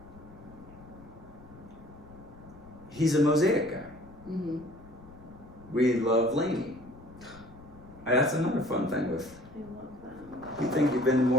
He's a Mosaic guy. Mm-hmm. We love Lainey. That's another fun thing with. I love that. You think you've been to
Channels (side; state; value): left; noise; rumble, 20 dB below the sound